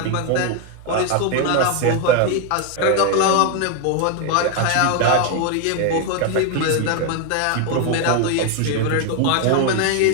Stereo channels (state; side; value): different; both; correlation 0.01